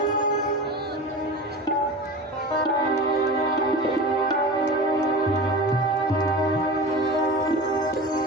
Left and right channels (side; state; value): both; normal; correlation 0.31